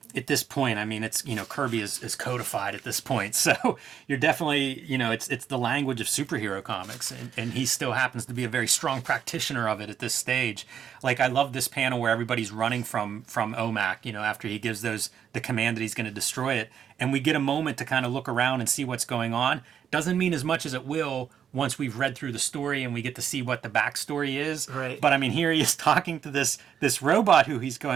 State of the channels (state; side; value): quieter; left; 8.4 dB